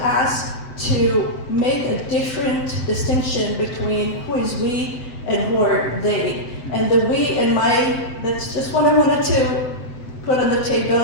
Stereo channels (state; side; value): late; right; 7.7 ms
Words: to make a different distinction between who is we and who are they. And the we and that's just what I wanted to put on the